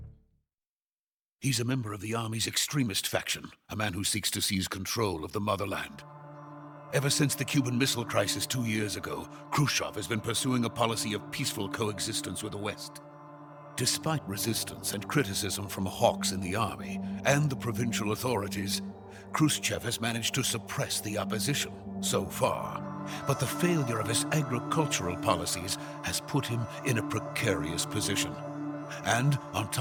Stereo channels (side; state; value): both; identical; correlation 1.00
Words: He's a member of the Army's extremist faction, a man who seeks to seize control of the motherland. Ever since the Cuban Missile Crisis 2 years ago, Khrushchev has been pursuing a policy of peaceful coexistence with the West. Despite resistance and criticism from hawks in the army and the provincial authorities, Khrushchev has managed to suppress the opposition so far. But the failure of his agricultural policies has put him in a precarious position. And on